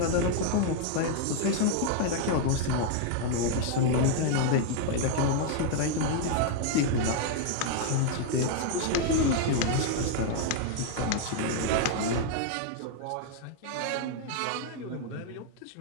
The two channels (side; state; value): both; different; correlation 0.00